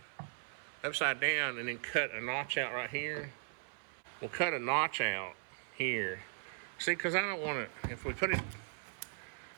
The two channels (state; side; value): silent; left; 52 dB below the other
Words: upside down and then cut a notch out right here. We'll cut a notch out here. See, because I don't want to, if we put it,